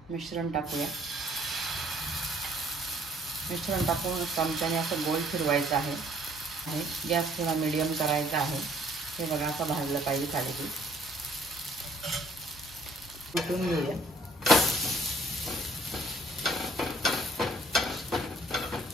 मिश्रण टाकूया। मिश्रण टाकून चमच्याने असं गोल फिरवायचं आहे। गॅस थोडा मीडियम करायचा आहे। हे बघा, असं भाजलं पाहिजे थालीपीठ। कुटून घेऊया।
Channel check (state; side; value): normal; both; correlation 0.60